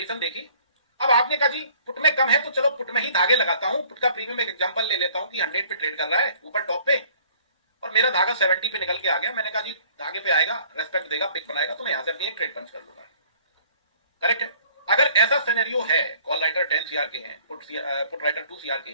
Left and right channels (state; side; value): inverted; both; correlation -0.56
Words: देखी। अब आपने कहा जी पुट में कम है तो चलो पुट में ही धागे लगाता हूं। पुट का प्रीमियम एक एग्जांपल ले लेता हूं कि 100 पे ट्रेड कर रहा है ऊपर टॉप पे, और मेरा धागा 70 पे निकल के आ गया। मैंने कहा जी धागे पे आएगा, रेस्पेक्ट देगा, पिक बनाएगा, तो मैं यहां से अपनी एक ट्रेड पंच कर लूंगा। करेक्ट है? अगर ऐसा सिनेरियो है, कॉल राइटर 10 CR के हैं, पुट राइटर 2 CR के